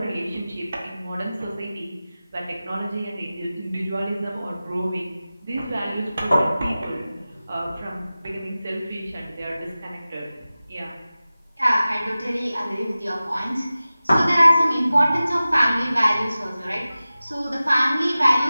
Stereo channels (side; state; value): both; inverted; correlation -0.96